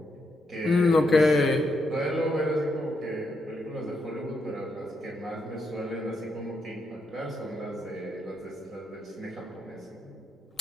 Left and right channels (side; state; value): both; normal; correlation 0.80